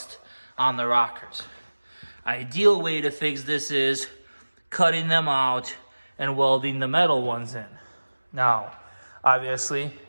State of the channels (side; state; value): both; inverted; correlation -1.00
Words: on the rockers. Ideal way to fix this is cutting them out and welding the metal ones in. Now, obviously,